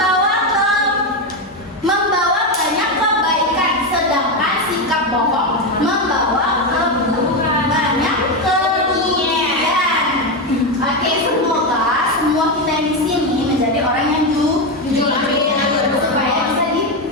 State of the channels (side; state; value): both; normal; correlation 0.10